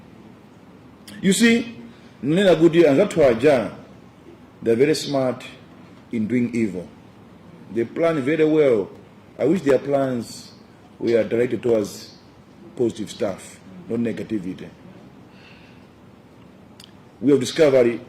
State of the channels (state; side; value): identical; both; correlation 1.00